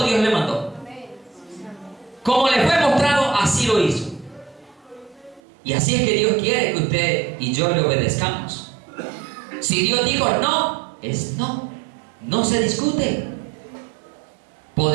Dios le mandó. Como le fue mostrado, así lo hizo. Y así es que Dios quiere que usted y yo le obedezcamos. Si Dios dijo no, es no. No se discute.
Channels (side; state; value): left; drops out; at 5.4 s